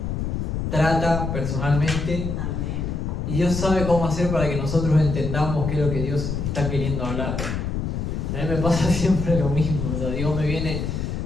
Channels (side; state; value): left; noise; rumble, 2 dB below the sound